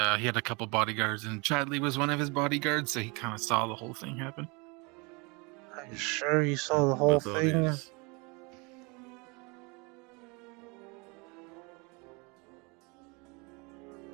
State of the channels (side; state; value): left; quieter; 29.2 dB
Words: he had a couple bodyguards, and Chadley was one of his bodyguards, so he kind of saw the whole thing happen. Are you sure you saw the my whole thought thing? is-